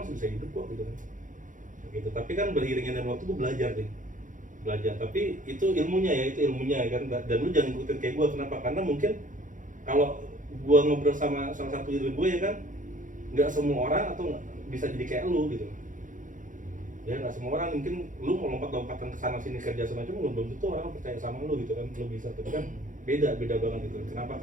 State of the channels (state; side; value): late; left; 0.38 ms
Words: bisa hidup kok gitu kan. Gitu. Tapi kan beriringnya dengan waktu gue belajar. Tapi itu ilmunya kan. Dan lu jangan ikutin kayak gue. Kenapa? Karena mungkin kalau gue ngobrol sama salah satu diri gue ya kan, nggak semua orang atau bisa jadi kayak lu gitu. Ya nggak semua orang, mungkin lu mau lompat-lompatan ke sana sini kerja semacam belum tentu orang percaya sama lu gitu kan. Lu bisa, tapi kan beda banget gitu. Kenapa?